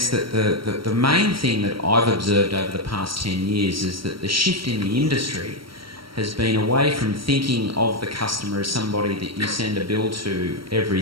that the main thing that I've observed over the past 10 years is that the shift in the industry has been away from thinking of the customer as somebody that you send a bill to every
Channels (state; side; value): late; left; 0.74 ms